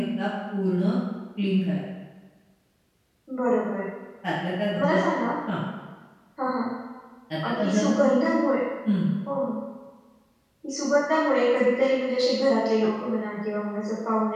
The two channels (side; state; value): both; identical; correlation 1.00